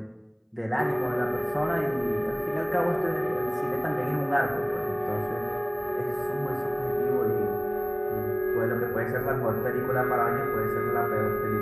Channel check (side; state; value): both; identical; correlation 1.00